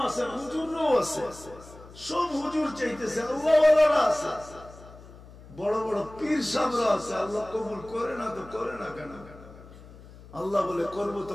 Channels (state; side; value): noise; left; hum, 19 dB below the sound